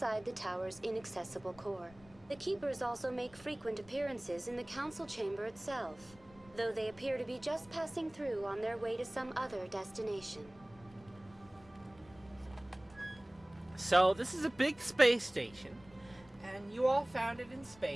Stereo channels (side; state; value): left; noise; rumble, 24 dB below the sound